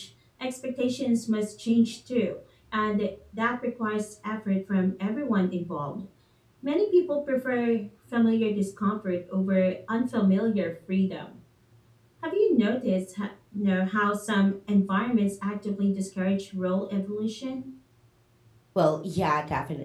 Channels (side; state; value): both; identical; correlation 1.00